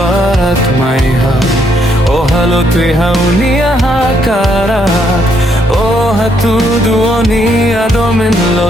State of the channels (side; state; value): both; normal; correlation 0.73